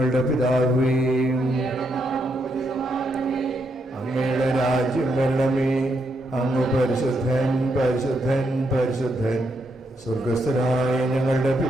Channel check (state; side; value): normal; both; correlation 0.79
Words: പിതാവേ, അങ്ങയുടെ രാജ്യം വരണമേ. അങ്ങ് പരിശുദ്ധൻ പരിശുദ്ധൻ പരിശുദ്ധൻ. സ്വർഗസ്ഥനായ ഞങ്ങളുടെ